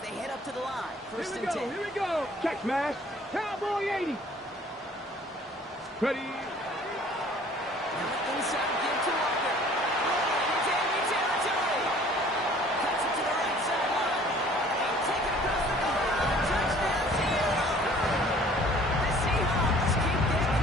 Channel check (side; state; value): both; normal; correlation 0.53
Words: they head up to the line. First and 10. Here we go. Check smash. Cowboy 80. Ready. Now inside, give to Walker. Rolling into enemy territory. Cuts it to the right sideline. And take it across the goal line. Touchdown, Seahawks. The Seahawks keep their